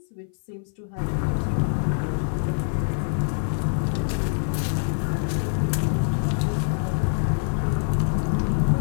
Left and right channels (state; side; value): silent; right; 56 dB below the other